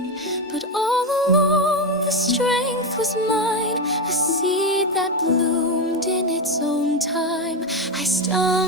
But all along the strength was mine, a seed that bloomed in its own time. I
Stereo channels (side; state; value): both; normal; correlation 0.12